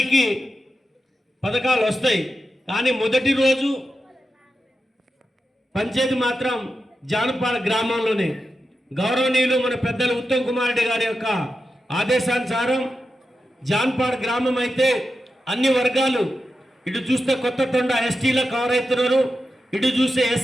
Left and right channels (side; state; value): both; normal; correlation 0.89